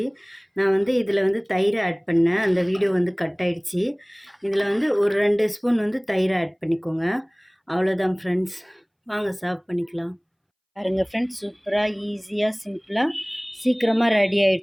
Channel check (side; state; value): both; identical; correlation 1.00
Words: நான் வந்து இதில் வந்து தயிர் ஆட் பண்ணேன். அந்த வீடியோ வந்து கட் ஆகிடுச்சி. இதில் வந்து ஒரு 2 ஸ்பூன் வந்து தயிர் ஆட் பண்ணிக்கோங்க. அவ்வளோதான் ஃப்ரெண்ட்ஸ், வாங்க சர்வ் பண்ணிக்கலாம். பாருங்கள் ஃப்ரெண்ட்ஸ், சூப்பராக ஈஸியாக சிம்பிளாக சீக்கிரமாக ரெடி